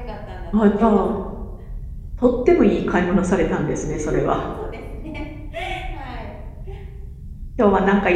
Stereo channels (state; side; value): identical; both; correlation 1.00